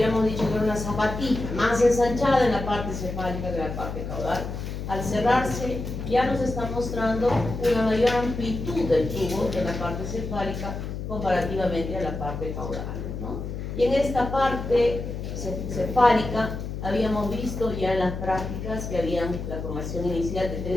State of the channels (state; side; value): noise; left; hum, 6 dB below the sound